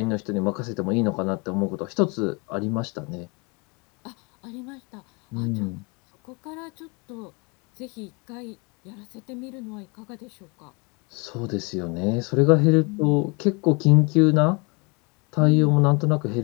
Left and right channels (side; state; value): right; quieter; 30.2 dB